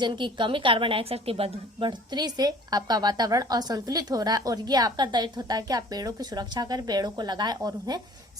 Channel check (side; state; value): both; normal; correlation 0.49